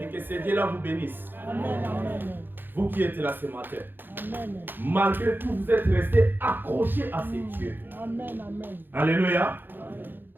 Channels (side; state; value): left; late; 0.096 ms